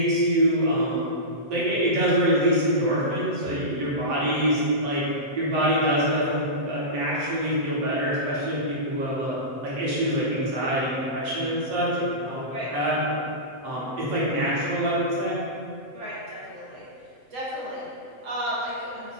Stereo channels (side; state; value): left; late; 7.8 ms